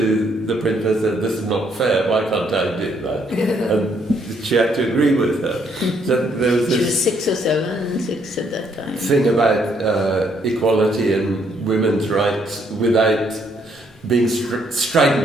the principal and said, this is not fair, why can't I do that? And she had to agree with her. So there was She this was 6 or 7, 6 at that time. thing about equality and women's rights without being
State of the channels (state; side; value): normal; both; correlation 0.70